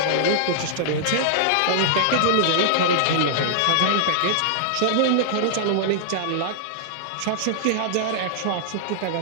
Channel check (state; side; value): different; both; correlation -0.01